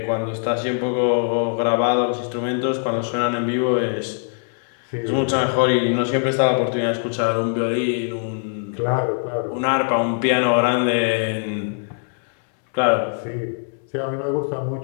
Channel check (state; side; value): silent; right; 64 dB below the other